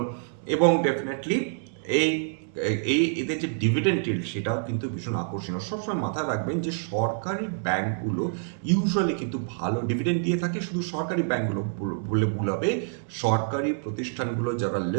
এবং ডেফিনেটলি এদের যে ডিভিডেন্ড ইল্ড সেটাও কিন্তু ভীষণ আকর্ষণীয়। সবসময় মাথায় রাখবেন যে সরকারি ব্যাংকগুলো ইউজুয়ালি কিন্তু ভালো ডিভিডেন্ড দিয়ে থাকে। শুধু সরকারি ব্যাংকগুলো বলে ভুল হবে, সরকারি প্রতিষ্ঠানগুলো যারা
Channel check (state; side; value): silent; left; digital silence